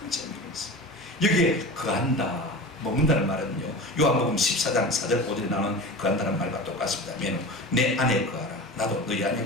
재미있어요. 여기에 거한다, 먹는다는 말은요, 요한복음 14장 4절 5절에 나오는 거한다는 말과 똑같습니다. 내 안에 거하라, 나도 너희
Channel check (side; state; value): both; normal; correlation 0.32